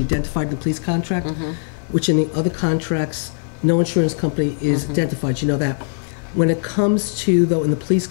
identified in the police contract, which in the other contracts, no insurance company is identified, you know that. When it comes to, though, in the police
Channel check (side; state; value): right; silent; 61 dB below the other